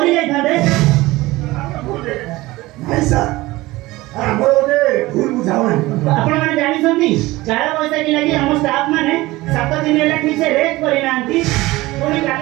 ଯାଇଥାନ୍ତେ ନାଇଁ ସାର୍ ଆମର ଗୋଟେ ଭୁଲ ବୁଝାମଣା ଆପଣମାନେ ଜାଣିଛନ୍ତି କାଳ ବୈଶାଖୀ ଲାଗି ଆମ ଷ୍ଟାଫ ମାନେ 7 ଦିନ ହେଲା ଠିକ ସେ ରେଷ୍ଟ କରିନାହାନ୍ତି ପୁଣି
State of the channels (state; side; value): quieter; left; 19.4 dB